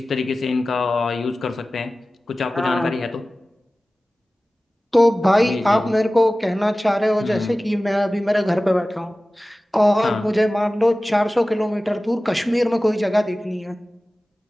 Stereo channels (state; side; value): normal; both; correlation 0.97